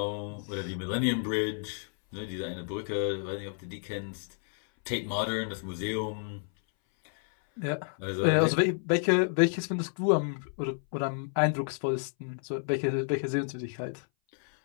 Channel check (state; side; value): silent; right; 58 dB below the other